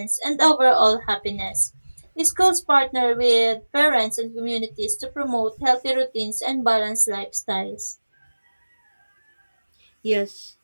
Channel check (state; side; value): inverted; both; correlation -1.00